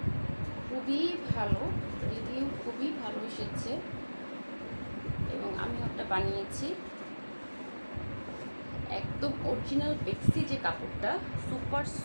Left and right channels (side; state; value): both; inverted; correlation -1.00